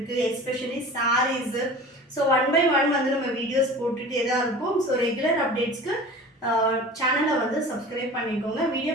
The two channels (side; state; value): both; normal; correlation 0.39